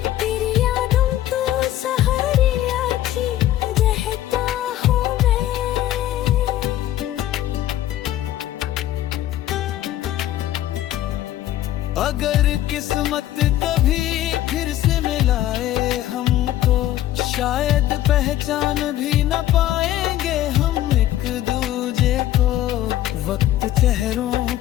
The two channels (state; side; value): quieter; right; 13.4 dB